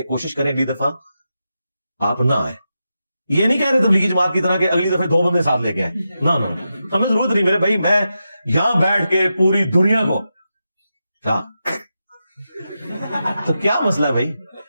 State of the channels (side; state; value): both; inverted; correlation -0.88